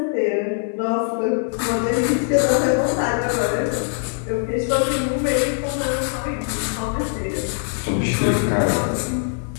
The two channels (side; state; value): right; silent; 55 dB below the other